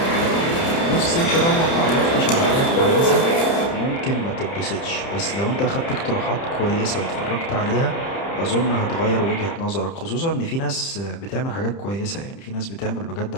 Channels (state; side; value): late; right; 30 ms